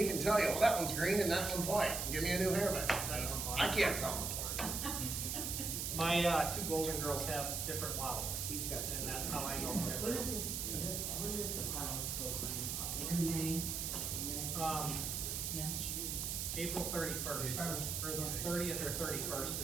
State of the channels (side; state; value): right; noise; hiss, 2 dB below the sound